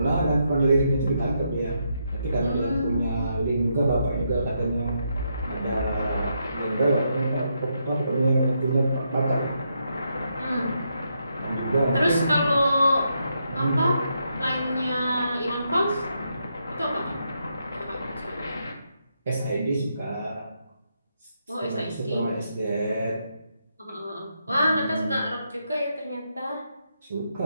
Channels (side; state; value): both; inverted; correlation -0.80